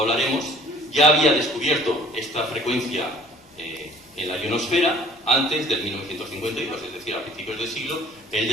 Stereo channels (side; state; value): both; normal; correlation 0.52